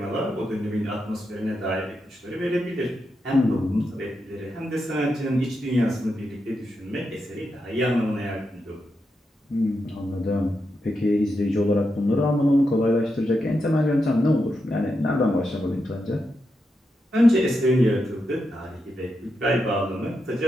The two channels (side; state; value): both; normal; correlation 0.86